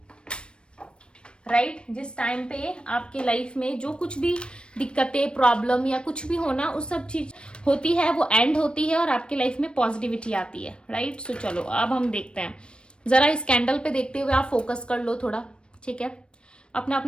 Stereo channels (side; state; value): right; late; 0.056 ms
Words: राइट, जिस टाइम पे आपके लाइफ में जो कुछ भी दिक्कतें, प्रॉब्लम या कुछ भी होना, उस सब चीज होती है, वो एंड होती है और आपकी लाइफ में पॉजिटिविटी आती है, राइट। सो चलो अब हम देखते हैं, जरा इस कैंडल पे देखते हुए आप फोकस कर लो थोड़ा, ठीक है, अपना